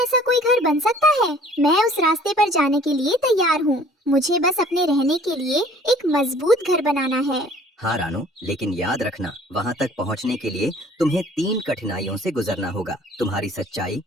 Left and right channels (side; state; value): both; normal; correlation 0.53